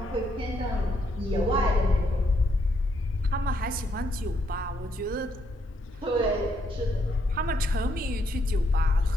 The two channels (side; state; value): both; normal; correlation 0.74